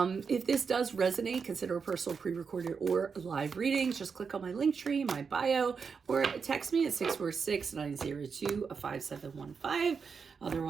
this does resonate, consider a personal pre-recorded or live reading. Just click on my link tree, my bio, or text me at 646-902-5715.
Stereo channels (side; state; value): left; quieter; 5.7 dB